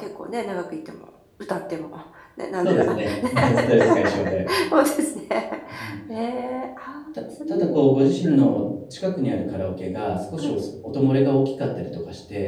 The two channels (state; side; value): identical; both; correlation 1.00